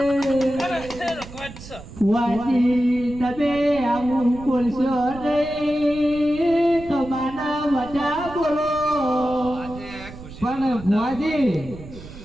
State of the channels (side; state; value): right; noise; rumble, 15 dB below the sound